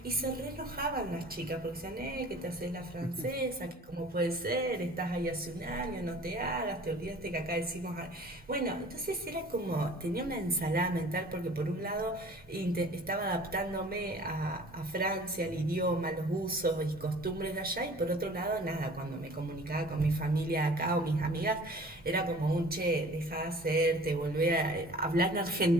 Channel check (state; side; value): normal; both; correlation 0.46